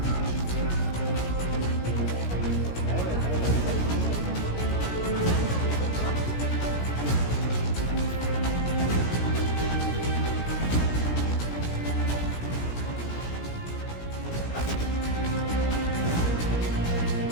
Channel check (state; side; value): late; right; 17 ms